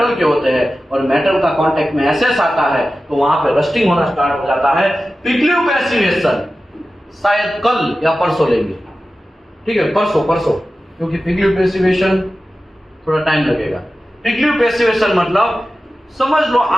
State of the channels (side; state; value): both; normal; correlation 0.94